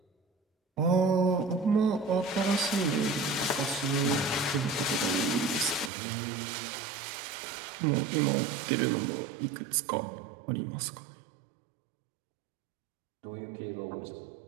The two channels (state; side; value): drops out; left; at 5.9 s